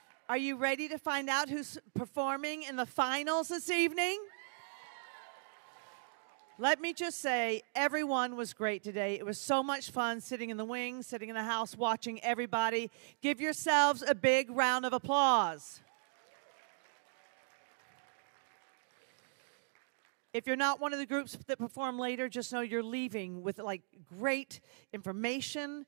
Are you ready to find out who's performing in the finals this evening? Let me just say, everyone was great today. It was so much fun sitting in the wings, sitting in the house, watching everybody. Give yourselves a big round of applause. If you're not one of the groups that perform later, just know you're leaving with like great information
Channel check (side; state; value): left; silent; digital silence